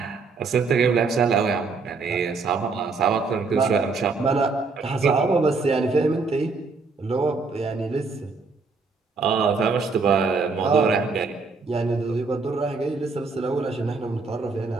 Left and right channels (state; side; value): quieter; left; 4.3 dB